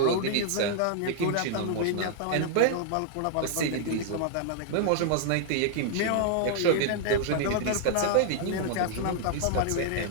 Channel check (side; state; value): both; different; correlation -0.01